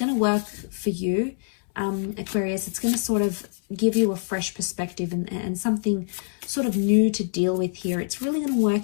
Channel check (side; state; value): right; silent; 62 dB below the other